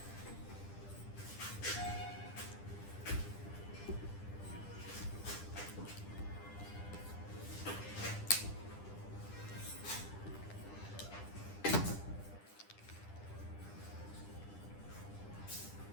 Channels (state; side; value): late; right; 10 ms